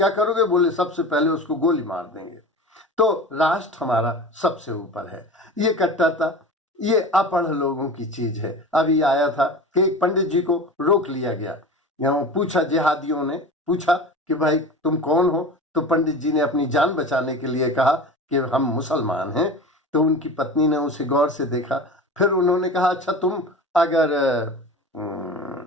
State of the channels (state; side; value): normal; both; correlation 0.33